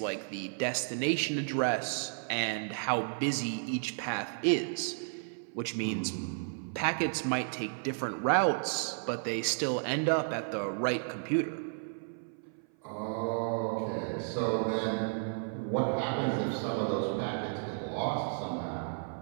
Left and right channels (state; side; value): silent; left; 56 dB below the other